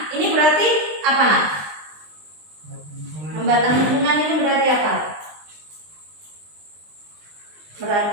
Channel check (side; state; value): left; late; 20 ms